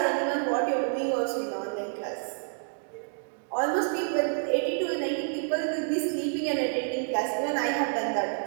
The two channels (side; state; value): left; silent; 59 dB below the other